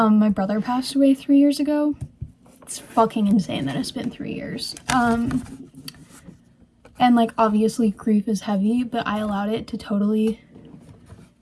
brother passed away 3 years ago. It's fucking insane that it's been 3 years. And like obviously grief is heavy, but I allowed it to totally...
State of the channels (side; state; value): both; identical; correlation 1.00